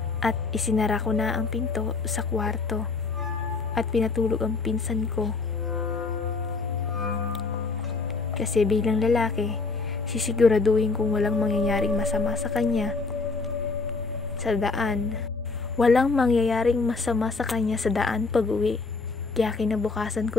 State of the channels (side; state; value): right; quieter; 4.1 dB